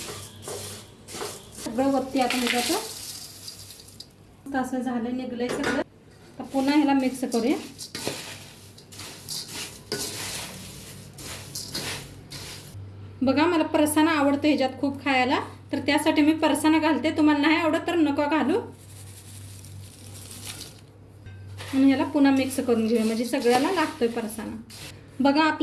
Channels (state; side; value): identical; both; correlation 1.00